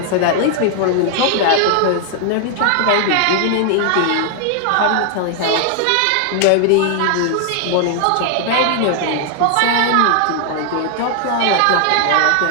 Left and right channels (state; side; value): different; both; correlation 0.00